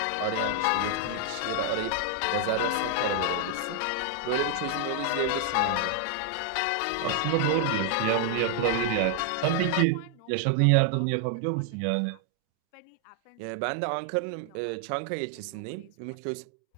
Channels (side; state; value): both; different; correlation 0.00